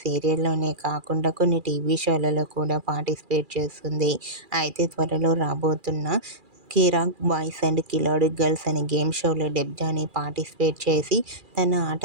సీరియల్లోనే కాకుండా కొన్ని టీవీ షోలలో కూడా పార్టిసిపేట్ చేస్తుంది. అయితే త్వరలో రాబోతున్న కిరాక్ బాయ్స్ అండ్ కిలాడి గర్ల్స్ అనే గేమ్ షోలో డెబ్జానీ పార్టిసిపేట్ చేసి తన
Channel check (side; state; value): left; late; 2.4 ms